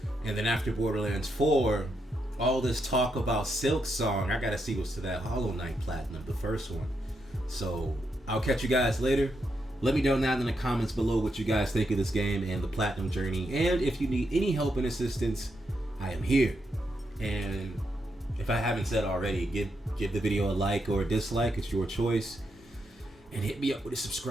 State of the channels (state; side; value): normal; both; correlation 0.82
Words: And then after Borderlands 4, all this talk about Silk Song, I gotta see what's to that Hollow Knight Platinum, the first one. So I'll catch you guys later. Let me know down in the comments below what you guys think of this game and the Platinum journey. And if you need any help and assistance, I am here. And if I haven't said already, give the video a like or a dislike. It's your choice. And hit me up with a